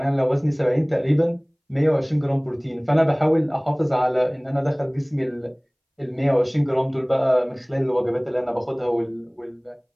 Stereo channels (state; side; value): identical; both; correlation 1.00